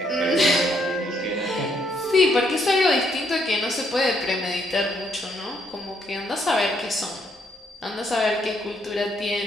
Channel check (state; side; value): normal; both; correlation 0.72